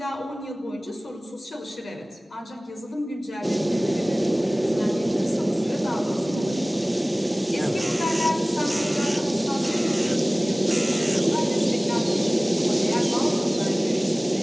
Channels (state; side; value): normal; both; correlation 0.98